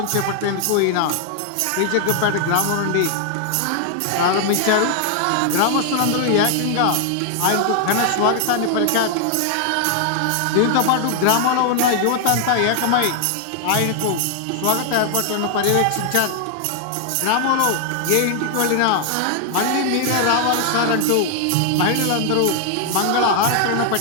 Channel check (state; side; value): different; both; correlation 0.00